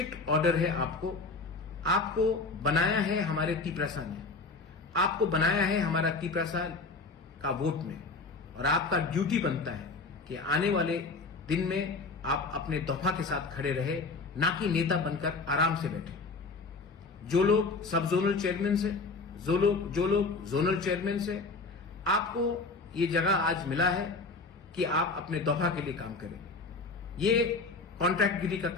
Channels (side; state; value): right; quieter; 3.8 dB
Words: ऑर्डर है आपको। आपको बनाया है हमारे तिपरासा ने, आपको बनाया है हमारा तिपरासा का वोट में, और आपका ड्यूटी बनता है कि आने वाले दिन में आप अपने दफा के साथ खड़े रहे, ना कि नेता बनकर आराम से बैठे। जो लोग सब जोनल चेयरमैन से, जो लोग जोनल चेयरमैन से, आपको ये जगह आज मिला है कि आप अपने दफा के लिए काम करें। ये कॉन्ट्रैक्टगिरी का